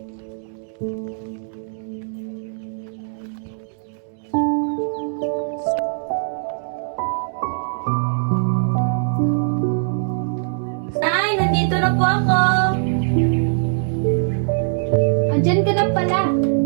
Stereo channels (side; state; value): left; silent; digital silence